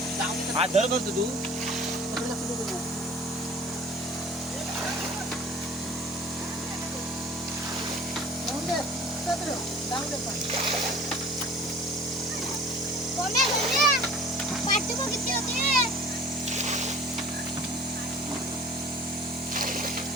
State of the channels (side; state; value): both; normal; correlation 0.46